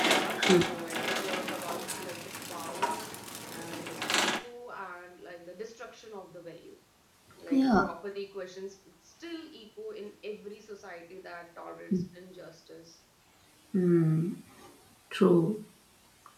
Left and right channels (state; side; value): identical; both; correlation 1.00